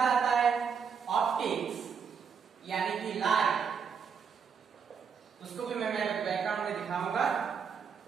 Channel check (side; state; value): left; quieter; 6.5 dB